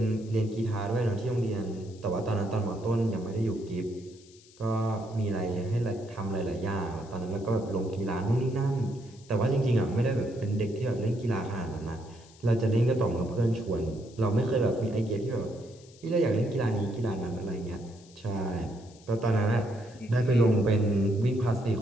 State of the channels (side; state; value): left; noise; hiss, 25 dB below the sound